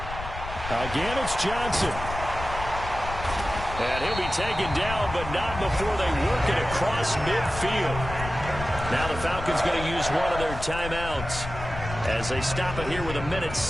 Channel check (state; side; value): noise; left; rumble, 9 dB below the sound